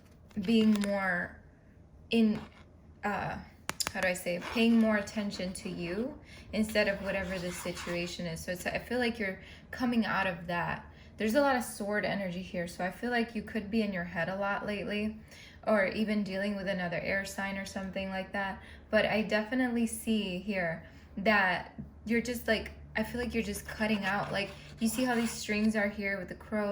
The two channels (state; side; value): identical; both; correlation 1.00